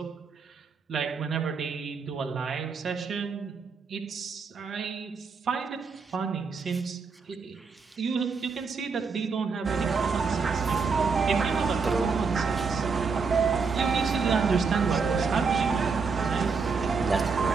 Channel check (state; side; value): quieter; left; 5.0 dB